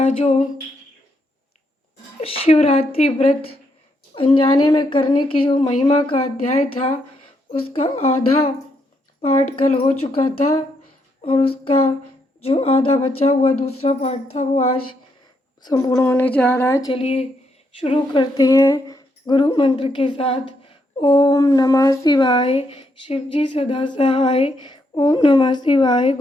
जो शिवरात्रि व्रत अनजाने में करने की जो महिमा का अध्याय था, उसका आधा पाठ कल हो चुका था और उसका जो आधा बचा हुआ दूसरा पाठ था वो आज संपूर्ण होने जा रहा है। चलिए शुरू करते हैं गुरु मंत्र के साथ। ओम नमः शिवाय। शिव जी सदा सहाय। ओम नमः शिवाय।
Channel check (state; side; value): normal; both; correlation 0.77